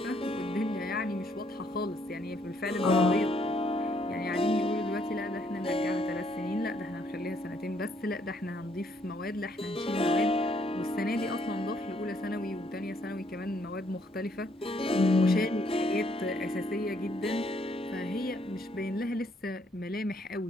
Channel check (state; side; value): normal; both; correlation 0.69